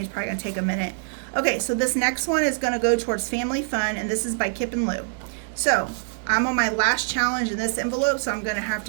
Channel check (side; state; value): left; silent; digital silence